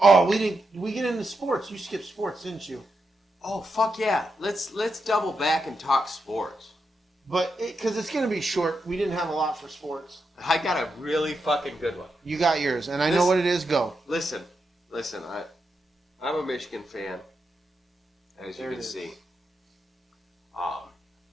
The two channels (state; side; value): normal; both; correlation 0.85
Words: We get into sports. You skipped sports, didn't you? Oh, fuck yeah. Let's double back and talk sports. But, because it's going to be short, we didn't have a lot for sports. I got a really fucking good one. You got yours, and I know what it is. Go. Listen, I'm a Michigan fan, as you can see.